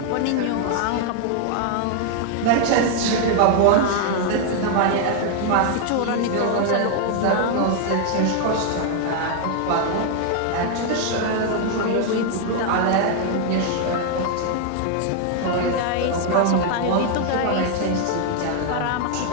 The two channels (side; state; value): both; different; correlation 0.00